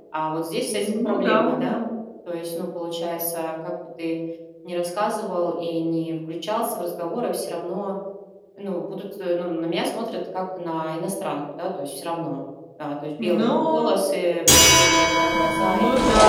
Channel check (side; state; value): both; identical; correlation 1.00